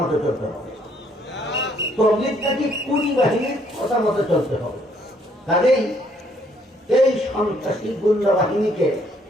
মতো চলতে হবে, তবলিগ নাকি কুড়ি বাহিনীর কথা মতো চলতে হবে। কাজেই এই সন্ত্রাসী গুন্ডা বাহিনীকে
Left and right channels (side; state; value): both; normal; correlation 0.67